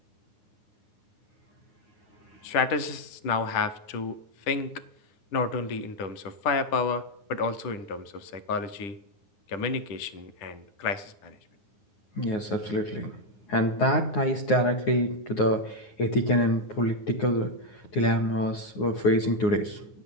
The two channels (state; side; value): late; right; 10 ms